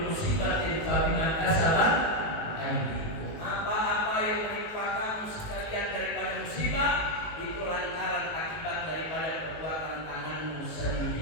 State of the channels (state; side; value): late; right; 19 ms